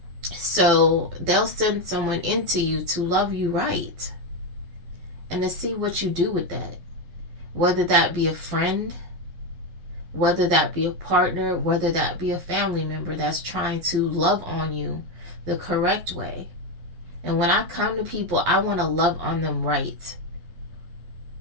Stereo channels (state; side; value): late; left; 11 ms